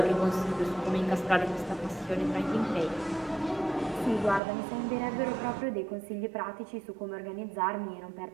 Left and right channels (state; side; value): drops out; left; at 4.4 s